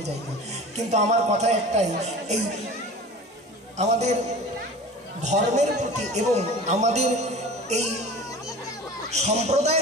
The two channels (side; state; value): both; normal; correlation 0.38